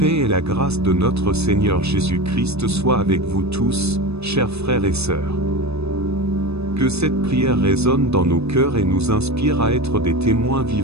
et la grâce de notre Seigneur Jésus-Christ soient avec vous tous, chers frères et sœurs. Que cette prière résonne dans nos cœurs et nous inspire à être des témoins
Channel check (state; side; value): late; left; 0.79 ms